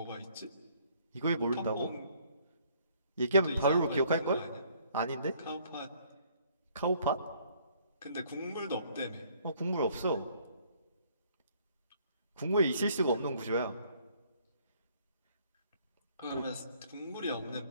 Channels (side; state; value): both; inverted; correlation -0.62